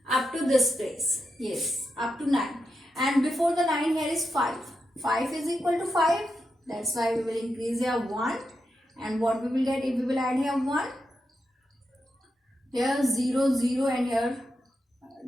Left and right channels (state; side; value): normal; both; correlation 0.86